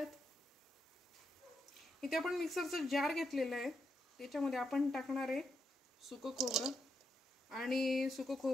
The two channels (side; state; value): both; normal; correlation 0.82